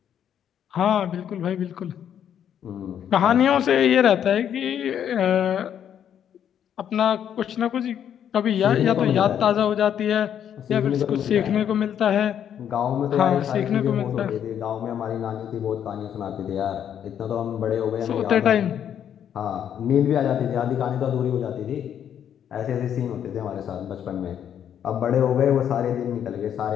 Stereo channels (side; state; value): right; quieter; 9.3 dB